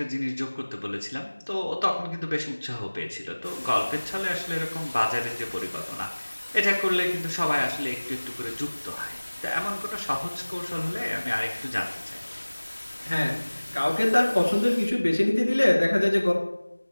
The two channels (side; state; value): both; inverted; correlation -1.00